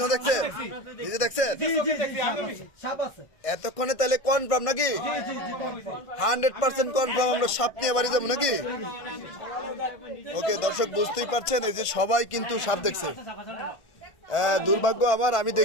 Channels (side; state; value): right; late; 1.6 ms